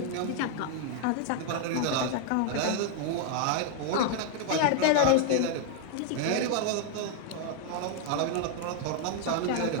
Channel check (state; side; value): different; both; correlation 0.00